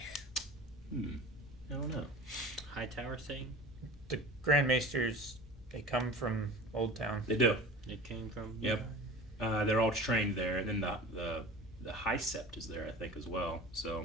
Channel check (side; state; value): both; normal; correlation 0.36